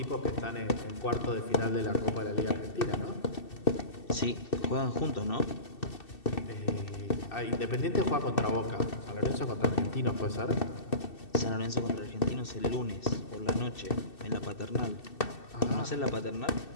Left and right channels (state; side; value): late; right; 2.7 ms